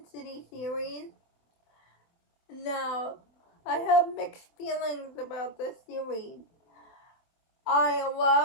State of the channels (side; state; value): right; late; 24 ms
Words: City series. Now, I have mixed feelings about this series. I